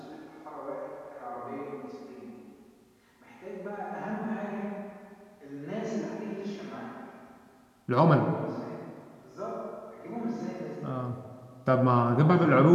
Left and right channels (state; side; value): identical; both; correlation 1.00